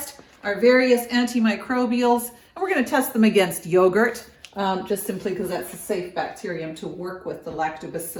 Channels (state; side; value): identical; both; correlation 1.00